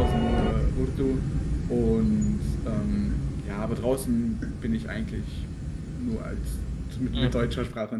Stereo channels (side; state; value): both; identical; correlation 1.00